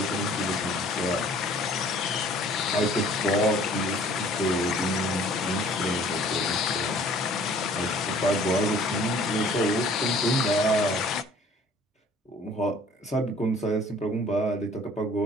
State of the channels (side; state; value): both; normal; correlation 0.53